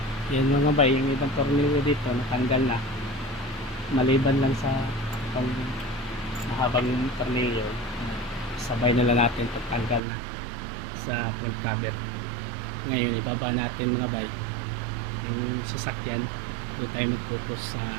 Yan mga bay, yung ibang tornilyo dito natanggal na. Maliban lang sa itong mahabang tornilyo, sabay na lang natin pagtanggal na sa front cover. Ngayon ibaba natin mga bay yung sasakyan, doon tayo mag-focus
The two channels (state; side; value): drops out; left; at 10.0 s